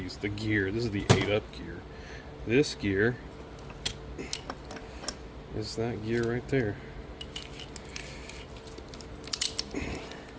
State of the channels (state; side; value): identical; both; correlation 1.00